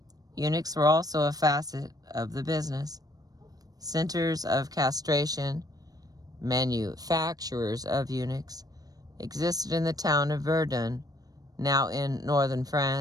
Eunuchs were also a facet of the business. Centers of castration, manufacturers of eunuchs, existed in the town of Verdun, now in northern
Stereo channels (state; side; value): late; left; 0.18 ms